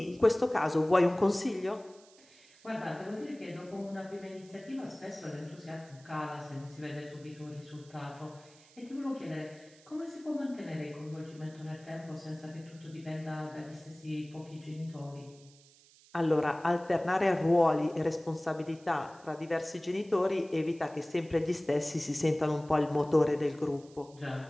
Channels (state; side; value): noise; right; hiss, 26 dB below the sound